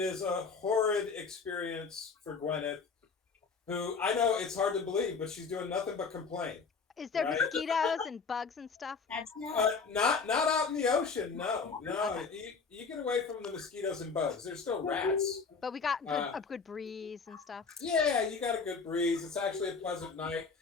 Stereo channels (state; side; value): quieter; right; 5.0 dB